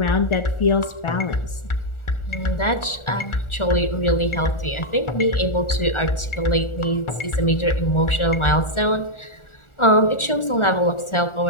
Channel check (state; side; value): late; right; 1.4 ms